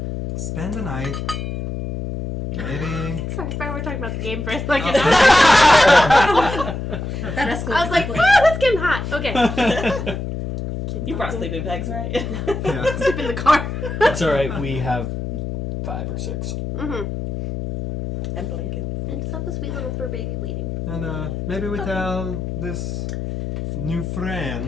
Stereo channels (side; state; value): left; noise; hum, 5 dB below the sound